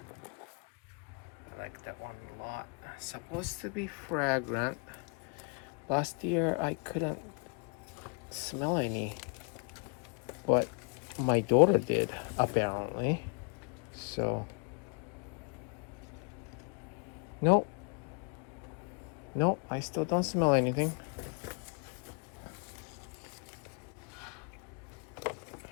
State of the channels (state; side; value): quieter; right; 37.9 dB